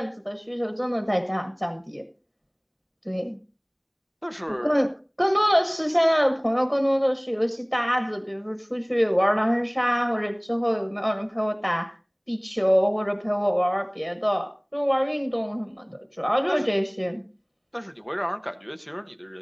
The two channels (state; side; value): identical; both; correlation 1.00